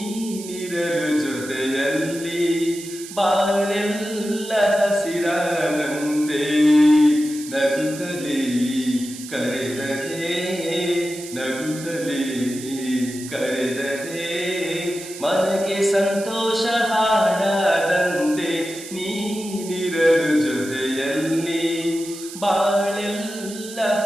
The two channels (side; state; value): right; noise; hiss, 13 dB below the sound